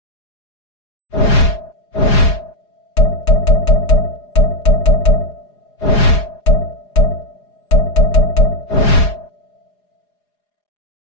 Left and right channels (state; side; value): late; right; 4.8 ms